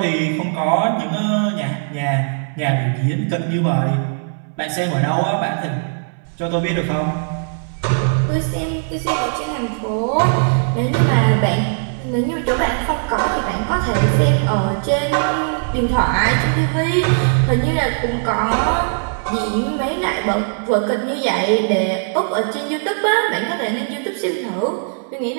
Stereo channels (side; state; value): left; silent; 63 dB below the other